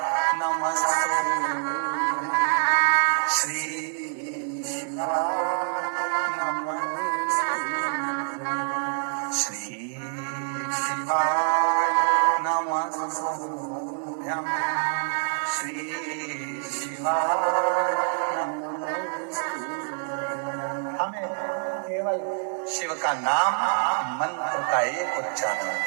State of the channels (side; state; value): left; silent; digital silence